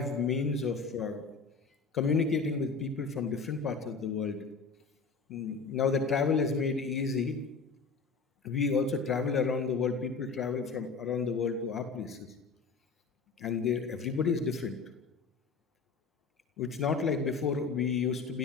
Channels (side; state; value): right; quieter; 4.9 dB